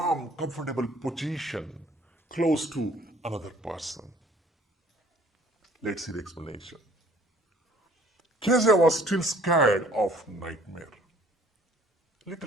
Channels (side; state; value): both; normal; correlation 0.56